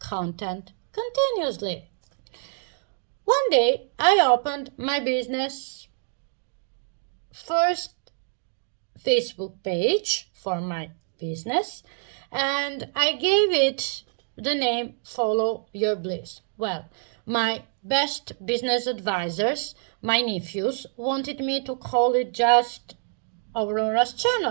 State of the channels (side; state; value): left; silent; 61 dB below the other